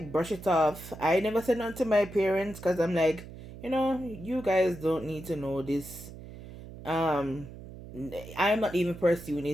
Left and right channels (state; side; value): noise; right; hum, 14 dB below the sound